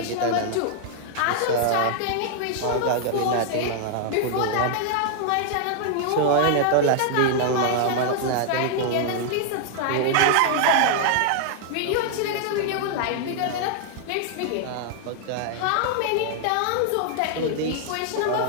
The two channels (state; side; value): different; both; correlation 0.00